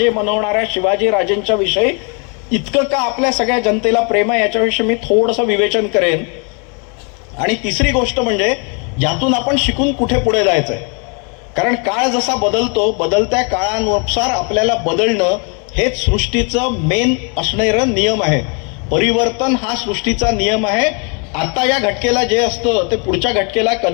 म्हणवणाऱ्या शिवाजी राजेंच्या विषयी इतकं का आपल्या सगळ्या जनतेला प्रेम आहे याच्याविषयी मी थोडंसं विवेचन करेन. आणि तिसरी गोष्ट म्हणजे यातून आपण शिकून कुठे पुढे जायचंय. कारण काळ जसा बदलतो, बदलत्या काळानुसार आपल्याला बदलणं हेच सृष्टीचं मेन असणारं नियम आहे. परिवर्तन हा सृष्टीचा नियम आहे. आता या घटकेला जे असतं ते पुढच्या घटकेला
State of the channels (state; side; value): quieter; right; 35.8 dB